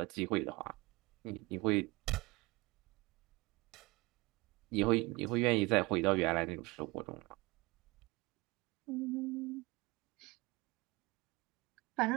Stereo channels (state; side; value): quieter; left; 23.6 dB